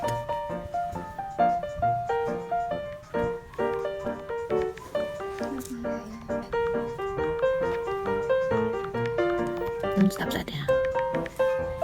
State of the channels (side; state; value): both; identical; correlation 1.00